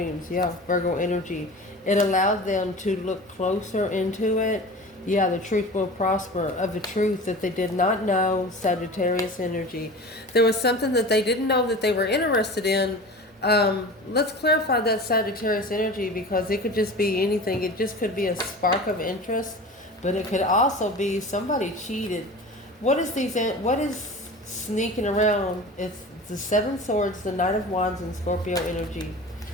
Yeah, Virgo energy. It allowed them to look closer into it. Yeah, the truth will prosper. Of the truth that they did not know, Sagittarius energy. There was something that they didn't know that they were interested in. Let's clarify that Sagittarius energy, because it could just be anything. It just could be a spark of interest, but it could also be somebody cheated. What is sneaking around? It's the 7 swords, the Knight of Wands, and Scorpio energy.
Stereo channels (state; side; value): normal; both; correlation 0.35